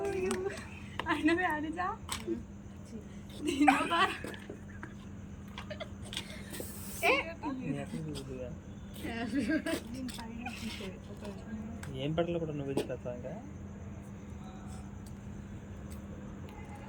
ఏం పట్ల కూడా నువ్వు చేస్తా ఇంకా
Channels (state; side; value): identical; both; correlation 1.00